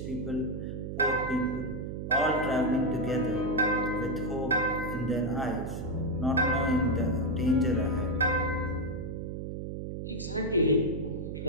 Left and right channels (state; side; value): noise; right; hum, 6 dB below the sound